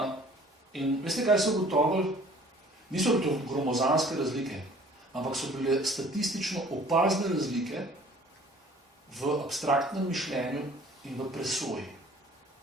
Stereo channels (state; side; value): normal; both; correlation 0.52